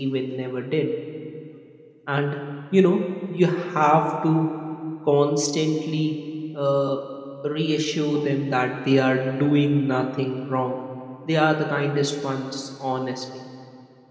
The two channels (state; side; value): identical; both; correlation 1.00